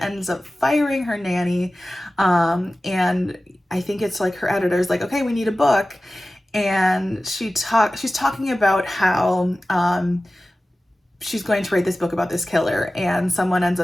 up firing her nanny, and I think it's like her editor's like, okay, we need a book. And she's talking about how she's going to write this book about this killer, and someone ends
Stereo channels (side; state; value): both; normal; correlation 0.96